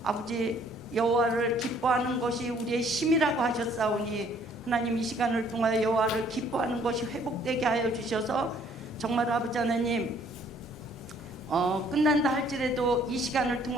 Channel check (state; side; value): normal; both; correlation 0.61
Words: 아버지 여호와를 기뻐하는 것이 우리의 힘이라고 하셨사오니 하나님, 이 시간을 통하여 여호와를 기뻐하는 것이 회복되게 하여 주셔서 정말 아버지 하나님 끝난다 할지라도 이 시간을